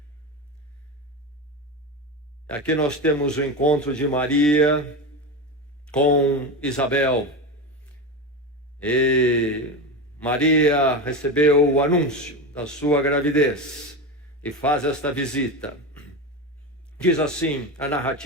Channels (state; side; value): normal; both; correlation 0.20